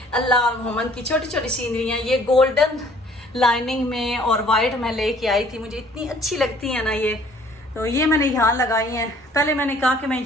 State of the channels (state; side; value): normal; both; correlation 0.57